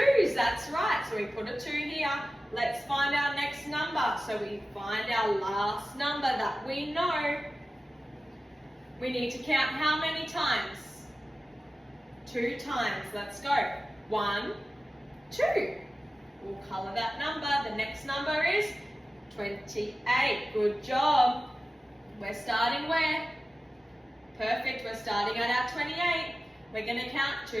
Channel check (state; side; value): normal; both; correlation 0.95